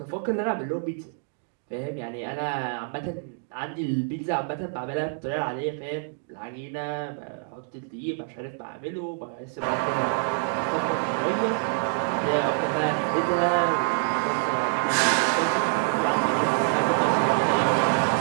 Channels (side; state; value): left; silent; digital silence